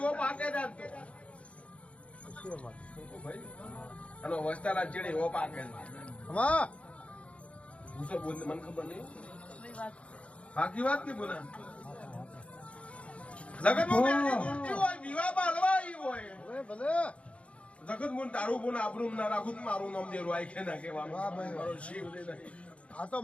પાકે દાતો ભાઈ અને વસ્તારા ચીડી હો પાકે હા હું તો બોલ મને ખબર નહીં બાકી વાત નહીં બોલા જગત મોની હોય વિવાહ બાલવાઈ હોય ભલે જગત મોન તારું બોન આપણું ના રાખું મારું નામ દેરું આઈ કે ના કહેવાનું મારો શિવ દે નહીં આ તો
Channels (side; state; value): right; late; 0.062 ms